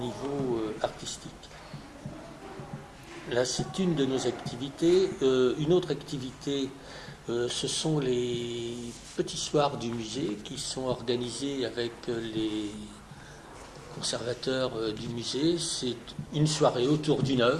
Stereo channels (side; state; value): both; identical; correlation 1.00